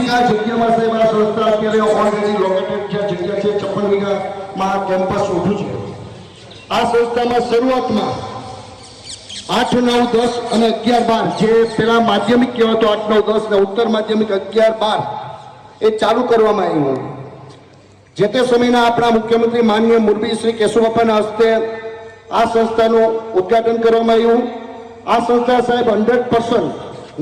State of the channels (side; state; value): both; identical; correlation 1.00